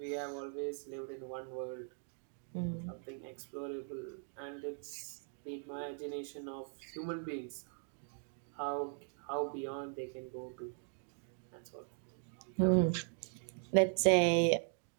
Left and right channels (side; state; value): left; silent; 51 dB below the other